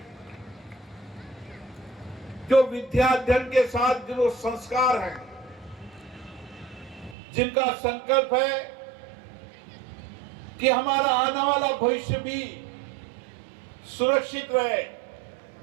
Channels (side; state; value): left; drops out; at 7.2 s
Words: जो विद्याध्ययन के साथ जो संस्कार हैं, जिनका संकल्प है कि हमारा आने वाला भविष्य भी सुरक्षित रहे,